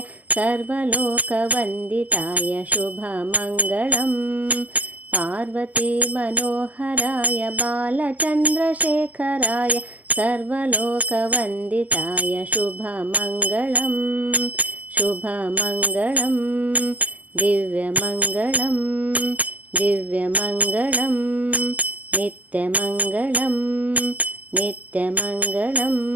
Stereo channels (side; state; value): left; late; 0.078 ms